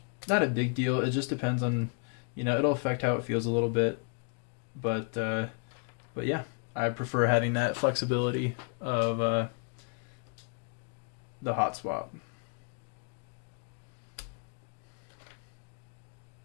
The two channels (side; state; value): right; quieter; 38.8 dB